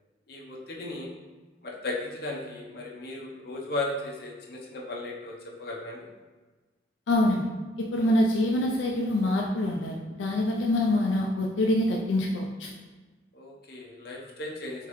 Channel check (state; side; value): normal; both; correlation 0.60